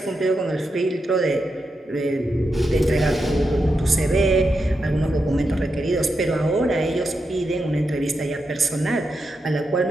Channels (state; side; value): normal; both; correlation 0.86